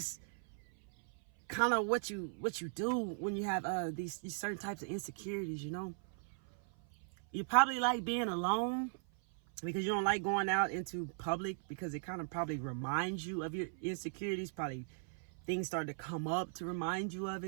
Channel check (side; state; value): left; silent; 52 dB below the other